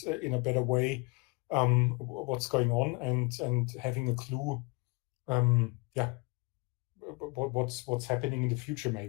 in a better way what's going on, and having a clue, what's happening in the future,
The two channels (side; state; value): right; quieter; 28.9 dB